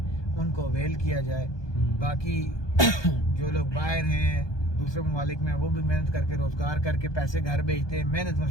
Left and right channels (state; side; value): late; right; 1.2 ms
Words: ان کو اویل کیا جائے. باقی جو لوگ باہر ہیں دوسرے ممالک میں، وہ بھی محنت کر کے روزگار کر کے پیسے گھر بھیجتے ہیں، محنت